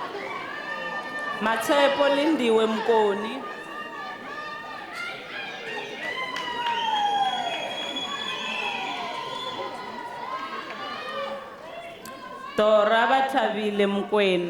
Matshepo Lindiwe Mkoni. Dora Bathabile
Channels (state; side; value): identical; both; correlation 1.00